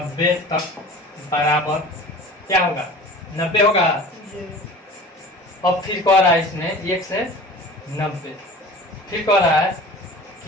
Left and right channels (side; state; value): both; normal; correlation 0.41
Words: तक बराबर क्या होगा, 90 होगा। जी अब फिर कह रहा है इसमें 1 से 90, फिर कह रहा है